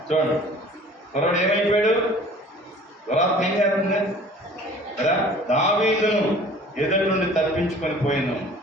చూడండి, కుర్రాడు ఏమైపోయాడు? దురాత్మ ఏం చేస్తుంది కదా. దావీదును ఎదుటి నుండి తప్పించుకొని పోయాను.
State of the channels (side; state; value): both; normal; correlation 0.48